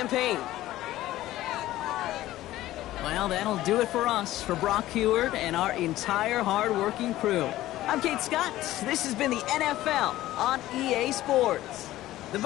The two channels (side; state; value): right; quieter; 15.3 dB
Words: Well, that'll do it for us, for Brock Huard and our entire hard-working crew. I'm Kate Scott. This has been the NFL on EA Sports. The